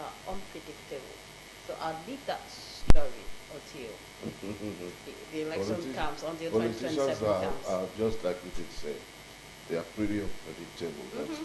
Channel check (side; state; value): both; identical; correlation 1.00